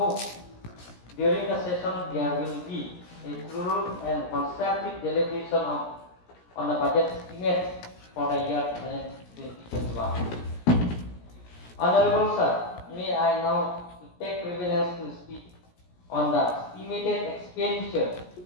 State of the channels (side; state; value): right; late; 17 ms